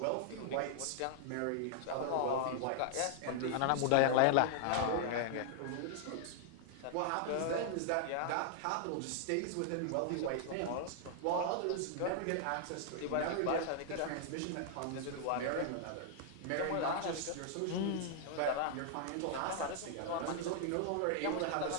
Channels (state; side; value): different; both; correlation -0.01